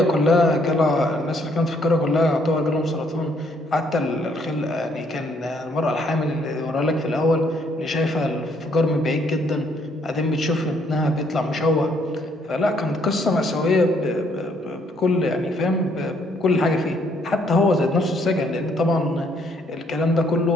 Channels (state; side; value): normal; both; correlation 0.68